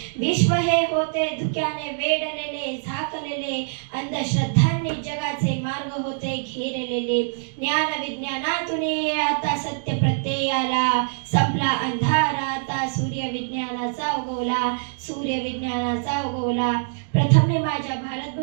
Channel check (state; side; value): silent; left; digital silence